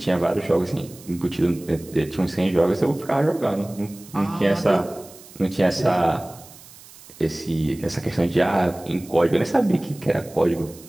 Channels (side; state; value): right; noise; hiss, 21 dB below the sound